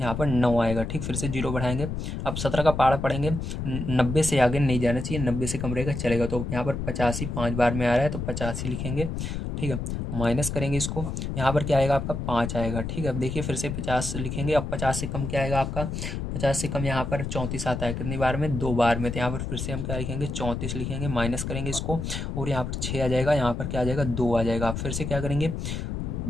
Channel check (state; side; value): noise; left; rumble, 4 dB below the sound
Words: पर 9 आएगा, ठीक। फिर से 0 बढ़ाएंगे। अब 17 का पारा पढ़ेंगे, 90 से आगे नहीं जाना चाहिए, 90 से कम रहेगा चलेगा। तो यहाँ पर 85 5 बार में आ रहा है तो 85 लिखेंगे, ठीक है। माइनस करेंगे इसको, यहाँ पर क्या आएगा आपका, 5 आएगा, ठीक है। अब देखिए फिर से 50 लिखेंगे। अब 50 से कम क्या आएगा आपका, 50 से कम यहाँ पर 34 आता है, कितनी बार में, 2 बार में। तो यहाँ पर फिर से हम क्या लिखेंगे, 34 लिखेंगे, माइनस करेंगे इसको और यहाँ पर 6 आ जाएगा, यहाँ पर क्या आ जाएगा, 2 आ जाएगा। फिर से क्या करेंगे,